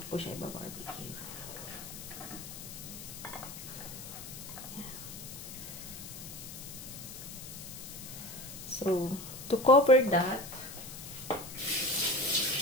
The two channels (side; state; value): left; noise; hiss, 11 dB below the sound